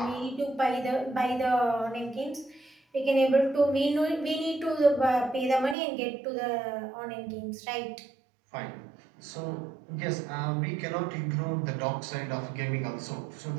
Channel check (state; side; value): drops out; left; at 5.8 s